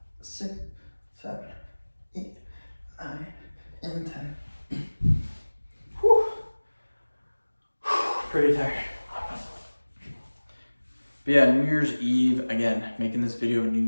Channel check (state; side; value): inverted; both; correlation -1.00